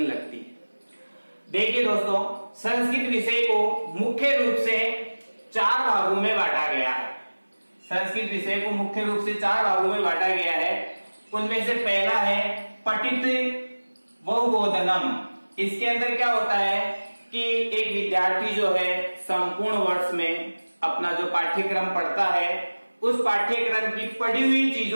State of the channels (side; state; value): both; inverted; correlation -1.00